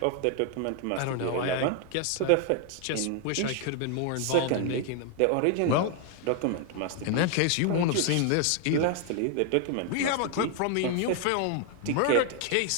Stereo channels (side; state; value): both; different; correlation 0.00